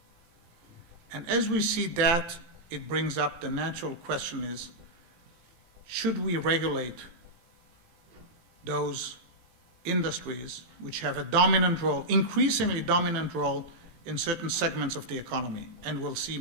And as we see that, it brings up the natural question is, should we regulate those industries which have a dominant role, increasingly dominant role in certain segments of the economy? And we'll see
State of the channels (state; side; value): late; left; 18 ms